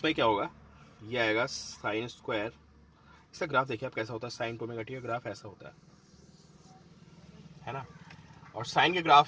क्या होगा, ये आएगा साइन स्क्वायर, इसका ग्राफ देखिए आप कैसा होता है, साइन टू ओमेगा टी का ग्राफ ऐसा होता है ना। और साइन के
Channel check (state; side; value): identical; both; correlation 1.00